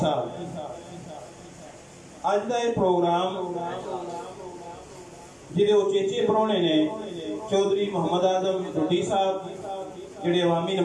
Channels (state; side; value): identical; both; correlation 1.00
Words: साहब। अज का यह प्रोग्राम जिहदे उचेचे परौने ने चौधरी मोहम्मद आजम ढुड्डी साहब जिहड़े अवामी